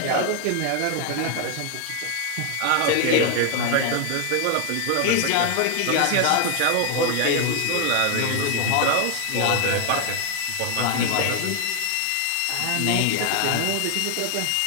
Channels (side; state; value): both; different; correlation 0.00